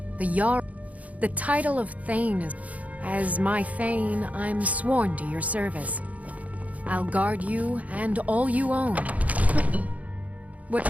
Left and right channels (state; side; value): late; left; 0.070 ms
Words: The Jarl... The title of Thane is... As my Thane, I'm sworn to your service. I'll guard you and all you own. What